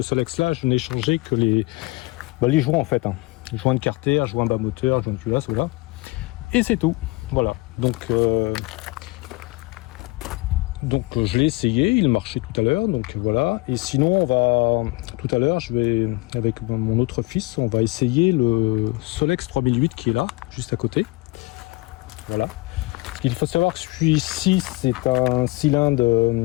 Solex là, je n'ai changé que les joints en fait. Joint de carter, joint bas moteur, joint de culasse, voilà. Et c'est tout. Voilà. Donc je l'ai essayé, il marchait tout à l'heure, donc voilà. Et sinon, tout à l'heure, je vais, avec mon autre fils, on va essayer le Solex 3008 qui est là, juste à côté. Voilà. Il faut savoir que celui-ci, c'est un cylindre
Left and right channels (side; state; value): right; quieter; 23.3 dB